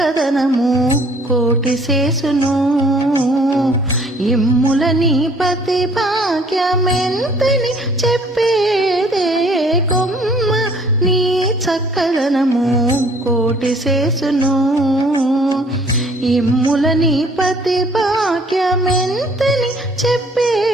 కోటి శేషును ఇమ్ముల నీ పతి భాగ్యమెంతని చెప్పేదే కొమ్మ నీ చక్కదనము కోటి శేషును ఇమ్ముల నీ పతి భాగ్యమెంతని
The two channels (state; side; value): normal; both; correlation 0.58